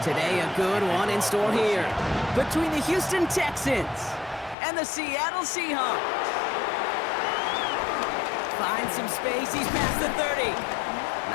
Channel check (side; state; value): right; drops out; at 4.5 s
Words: Today, a good one in store here between the Houston Texans and the Seattle Seahawks. Finds some space, he's past the 30.